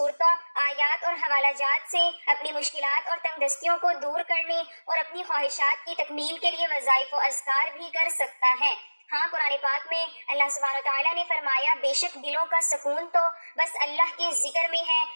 آیات اور حوالہ جات سے اپنی مشکلات اور تنگ دستیوں کو دور کرنے اور اپنی خواہشات کی تکمیل کے لیے وظائف و اذکار بھی کر سکتا ہے۔ ہاں، قرآن پاک میں اللہ سبحانہ تعالیٰ نے فرمایا، بے شک دلوں کا سکون تو بس اللہ کے ذکر میں ہے،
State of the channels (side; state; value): both; inverted; correlation -1.00